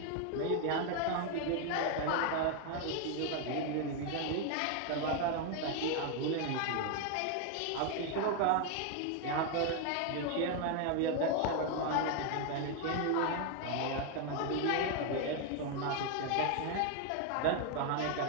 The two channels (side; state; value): both; different; correlation 0.01